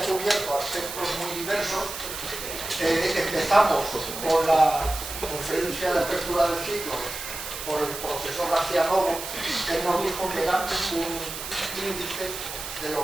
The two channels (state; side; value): noise; right; hiss, 8 dB below the sound